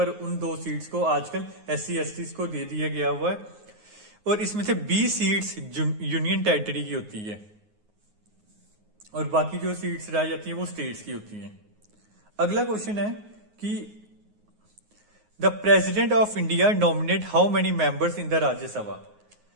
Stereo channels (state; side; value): late; left; 9.5 ms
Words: उन 2 सीट्स को आजकल SC STs को दे दिया गया हुआ है। और इसमें से 20 सीट्स यूनियन टेरिटरी की होती है, और बाकी जो सीट्स रह जाती है वो स्टेट्स की होती हैं। अगला क्वेश्चन है कि the president of India nominate how many members in the Rajya Sabha.